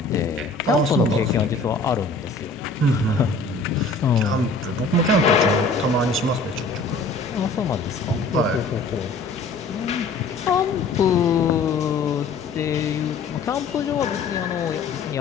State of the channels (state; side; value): quieter; right; 3.7 dB